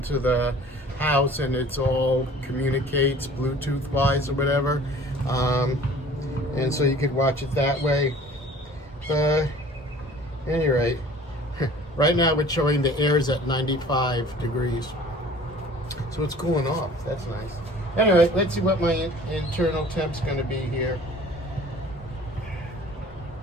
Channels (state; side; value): normal; both; correlation 0.48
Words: the house, and it's all communicates Bluetooth wise or whatever, and so you could watch it that way. Any rate, right now it's showing the air's at 95 degrees, so it's cooling off. That's nice. Anyway, let's see what my internal temp's going to be here.